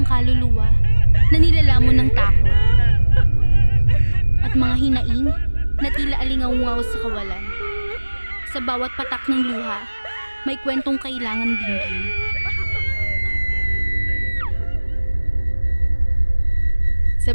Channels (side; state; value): both; inverted; correlation -1.00